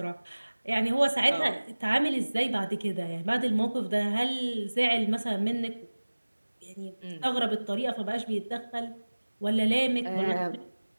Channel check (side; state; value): both; inverted; correlation -1.00